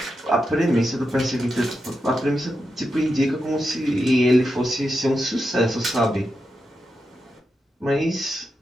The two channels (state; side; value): normal; both; correlation 0.87